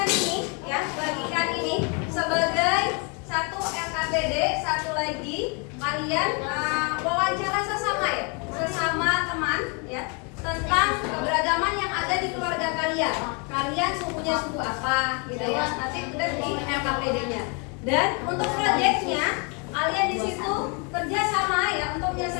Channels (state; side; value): quieter; right; 33.4 dB